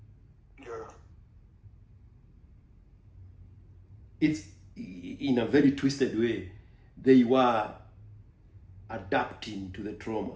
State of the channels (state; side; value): identical; both; correlation 1.00